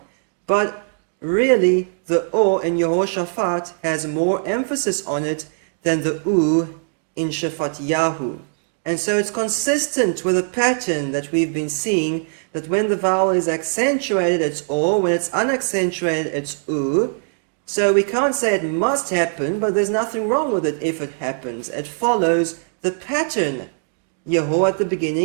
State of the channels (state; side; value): silent; left; digital silence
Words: But really, the O in Yehoshaphat has more emphasis on it than the U in Shafat Yahu. And so it's consistent with a pattern that we've been seeing, that when the vowel is accentuated, it's O, when it's unaccentuated, it's U. So we can't say it must happen, but there's nothing wrong with it if it happens. It follows the pattern. Yeho at the